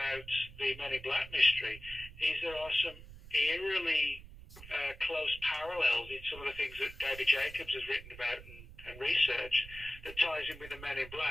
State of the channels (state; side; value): noise; right; rumble, 16 dB below the sound